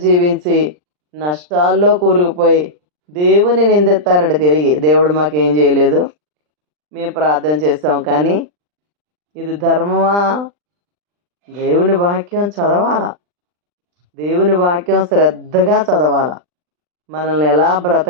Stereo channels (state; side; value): late; left; 40 ms